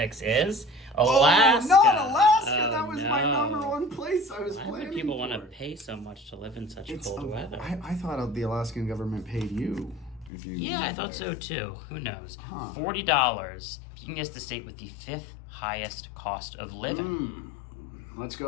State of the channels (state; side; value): drops out; right; at 10.3 s